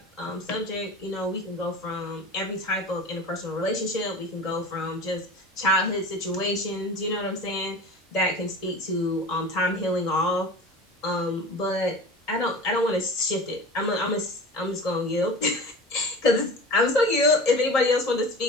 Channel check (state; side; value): normal; both; correlation 0.35